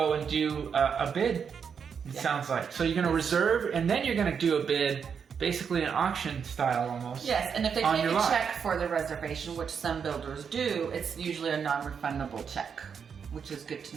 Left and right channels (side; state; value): left; quieter; 6.7 dB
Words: and do a bid. It sounds like. So you're gonna reserve, and then you're gonna do a bid. Basically an auction style almost. Yes, and if they take a check for the reservation, which some builders do, it's usually a non-refundable check, which is good to